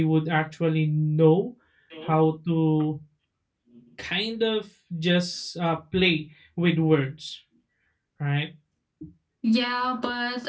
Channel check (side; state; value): both; identical; correlation 1.00